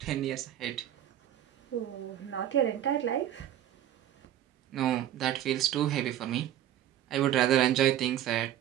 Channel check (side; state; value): left; quieter; 11.7 dB